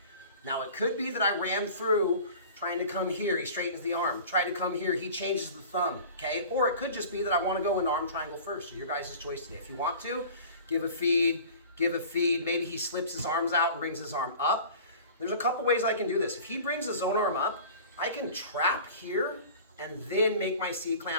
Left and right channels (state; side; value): inverted; both; correlation -0.42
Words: Now it could be that I ran through trying to come here, he straightens the arm. Try to come here, he changes the thumb, okay? Or it could just be that I want to go in arm triangle first. So your guys' choice today. If you want to, give a feed. Maybe he slips his arms out and brings his arm up. There's a couple ways I can do this. If he brings his own arm up, I can trap here and then make my